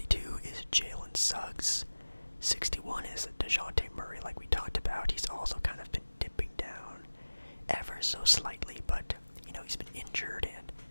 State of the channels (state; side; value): inverted; both; correlation -1.00